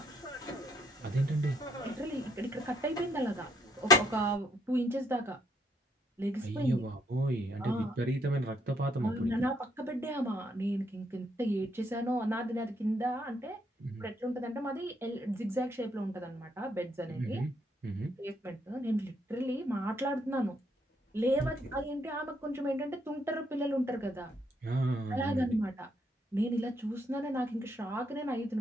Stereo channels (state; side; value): normal; both; correlation 0.71